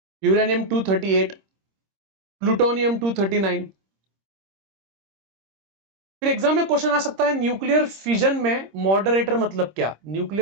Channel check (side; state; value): left; late; 26 ms